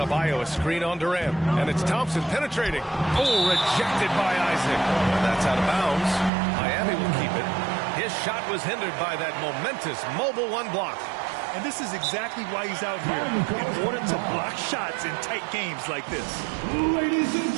a screen on Durant. And it's Thompson penetrating. Oh, rejected by Isaac. That's out of bounds. Miami will keep it. His shot was hindered by that momentous mobile 1 block. And this is exactly why he's out here, in order to block shots in tight games like this. Ladies and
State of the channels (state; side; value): drops out; left; at 6.3 s